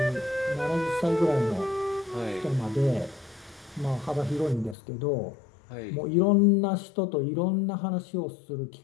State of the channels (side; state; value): right; drops out; at 4.8 s